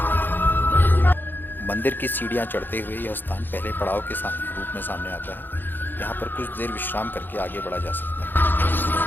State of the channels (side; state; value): right; late; 0.093 ms